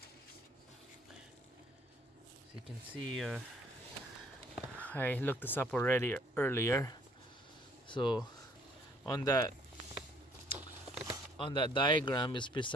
you can see, I looked this up already earlier. So on that diagram is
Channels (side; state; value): both; normal; correlation 0.62